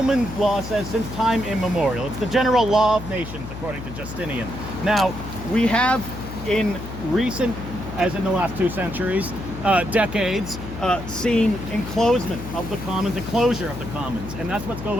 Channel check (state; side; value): noise; left; hum, 10 dB below the sound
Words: law says, since time immemorial. It's the general law of nations, according to Justinian. Now, we have in recent, as in the last 2 centuries, decades, seen enclosement of the commons, enclosure of the commons, and that's what's